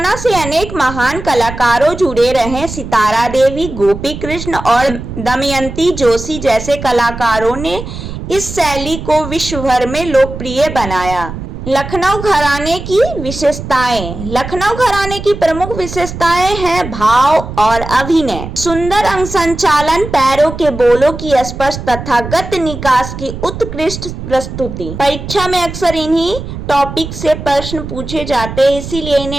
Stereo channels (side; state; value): right; noise; rumble, 9 dB below the sound